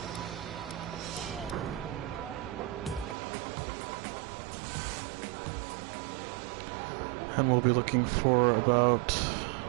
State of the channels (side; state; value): left; drops out; at 3.2 s